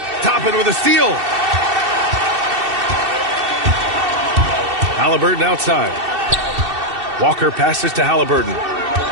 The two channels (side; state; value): left; late; 2.7 ms